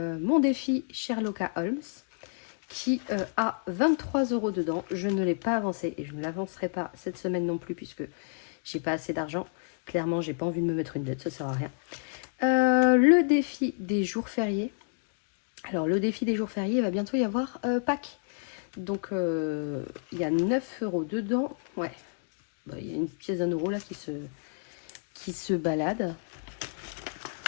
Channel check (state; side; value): silent; right; 58 dB below the other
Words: défi Sherlock Holmes qui a 23 € dedans. Je ne l'ai pas avancé et je ne l'avancerai pas cette semaine non plus puisque j'ai pas assez d'argent. Clairement, j'ai pas envie de me mettre une dette, ça sert à rien. Le défi des jours fériés. Alors, le défi des jours fériés, il va bientôt y avoir Pâques. Donc, il y a 9 € dedans. Ouais, bah, il y a une pièce d'1 € là qui se balade.